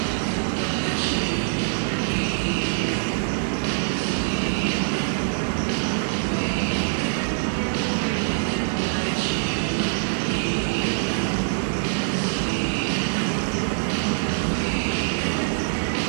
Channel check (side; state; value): left; silent; 63 dB below the other